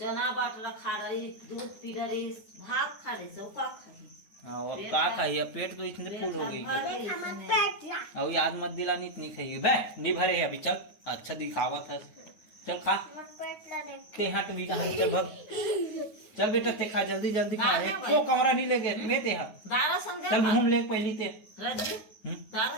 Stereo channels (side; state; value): right; late; 9.5 ms